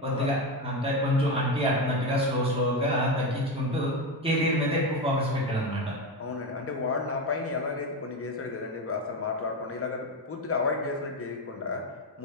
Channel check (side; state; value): both; normal; correlation 0.15